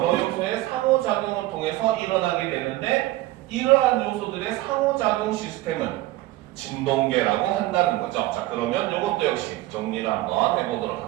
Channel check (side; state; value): left; quieter; 17.3 dB